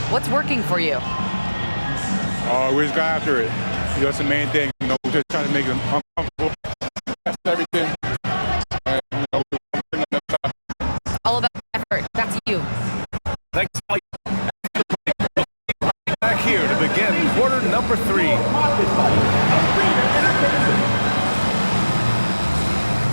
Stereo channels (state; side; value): inverted; both; correlation -1.00